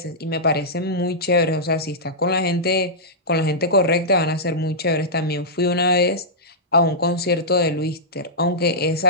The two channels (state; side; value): normal; both; correlation -0.13